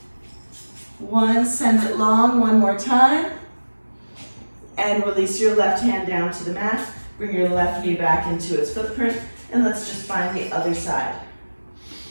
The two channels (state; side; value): inverted; both; correlation -1.00